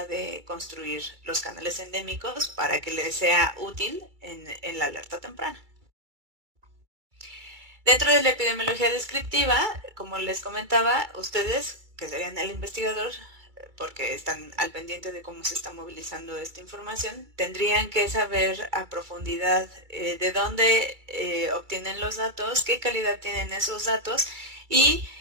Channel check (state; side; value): late; left; 2.3 ms